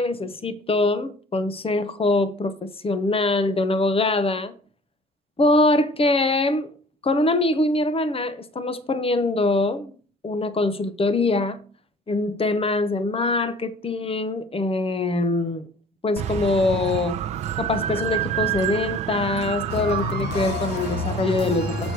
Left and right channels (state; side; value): normal; both; correlation 0.49